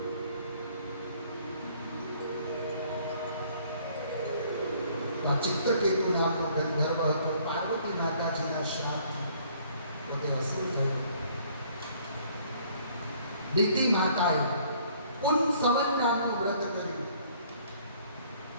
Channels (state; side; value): inverted; both; correlation -0.60